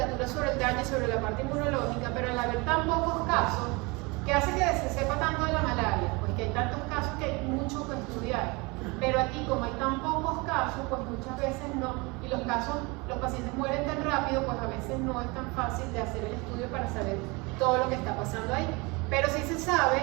sobre el daño, sobre la parte inmunológica, pero al haber tan pocos casos, ¿qué hace que se sepa tanto de la malaria? Pues que hay tantos casos que hay mucho que estudiar. Pero aquí, como hay tan pocos casos, pues muchas veces no, y los pacientes mueren tan rápido, pues a veces no es tan fácil de hacer el estudio para saber todo lo que está pasando ahí. Pero sí se sabe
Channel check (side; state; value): left; quieter; 26.6 dB